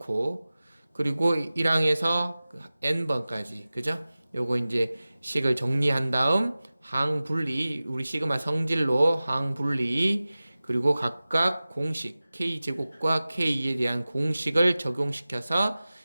그리고 1항에서 n번까지 그죠? 요거 이제 식을 정리한 다음 항 분리 우리 시그마 성질로 항 분리 그리고 각각 공식 k제곱과 k에 대한 공식을 적용시켜서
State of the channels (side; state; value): both; inverted; correlation -0.97